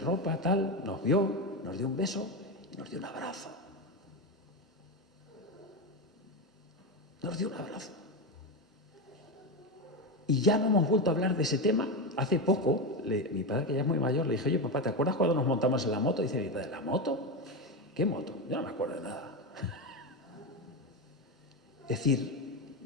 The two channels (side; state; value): both; normal; correlation 0.14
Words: tal, nos vio, nos dio un beso y nos dio un abrazo. Y ya no hemos vuelto a hablar de ese tema. Hace poco, mi padre, que ya es muy mayor, le dije, oye, papá, ¿te acuerdas cuando nos montamos en la moto? Dice mi padre, ¿la moto? ¿Qué moto? Yo no me acuerdo de nada. Es decir,